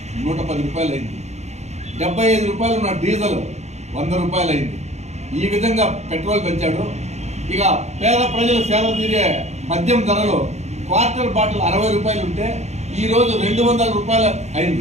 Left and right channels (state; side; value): late; left; 0.32 ms